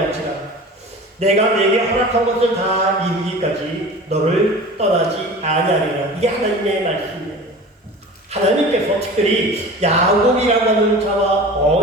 내가 내게 허락한 것을 다 이루기까지 너를 떠나지 아니하리라. 이게 하나님의 말씀이에요. 하나님께서 특별히 야곱이라고 하는 자와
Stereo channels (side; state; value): both; normal; correlation 0.37